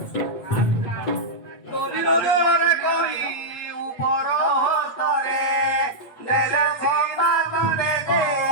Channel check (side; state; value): right; late; 8.3 ms